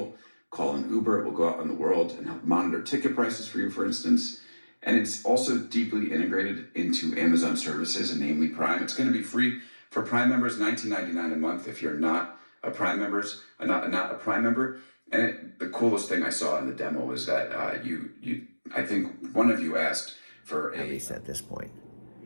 call an Uber. It will go out in the world and help monitor ticket prices for you, for instance. And it's also deeply integrated into Amazon services, and namely Prime. It's going to be free for Prime members, $19.99 a month if you're not a Prime not a Prime member. And the coolest thing I saw in the demo was that I think one of you asked for At least at this point.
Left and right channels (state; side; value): inverted; both; correlation -1.00